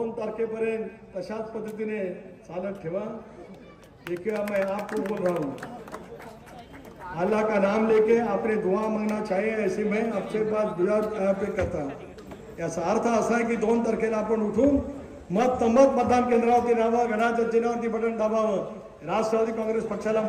तारखेपर्यंत तशाच पद्धतीने चालत ठेवा. देखिए मैं आपको बोल रहा हूँ, अल्लाह का नाम लेके आपने दुआ मांगना चाहिए, ऐसे मैं आपसे बात दुआ पे करता हूँ. याचा अर्थ असा आहे की 2 तारखेला आपण उठून मतदान केंद्रावरती राहावं, घड्याळाच्या चिन्हावरती बटन दाबावं, राष्ट्रवादी काँग्रेस पक्षाला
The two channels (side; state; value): both; identical; correlation 1.00